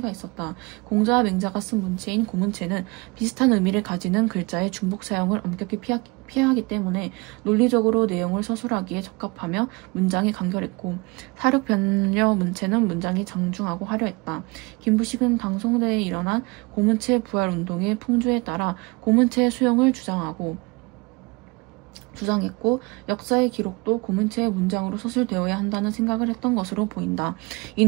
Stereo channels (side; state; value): left; quieter; 26.2 dB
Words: 있었다. 공자와 맹자가 쓴 문체인 고문체는 비슷한 의미를 가지는 글자의 중복 사용을 엄격히 피하기 때문에 논리적으로 내용을 서술하기에 적합하며 문장이 간결했고 사륙변려 문체는 문장이 장중하고 화려했다. 김부식은 당송대에 일어난 고문체 부활운동의 풍조에 따라 고문체의 수용을 주장했고 역사의 기록도 고문체의 문장으로 서술되어야 한다는 생각을 했던 것으로 보인다.